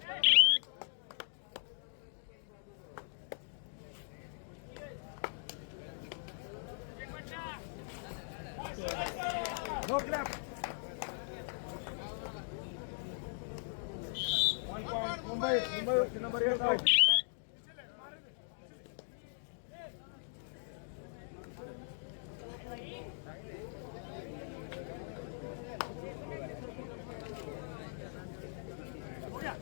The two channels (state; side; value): silent; right; digital silence